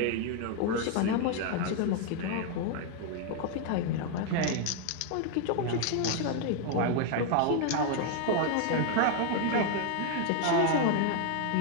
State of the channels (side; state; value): both; different; correlation 0.00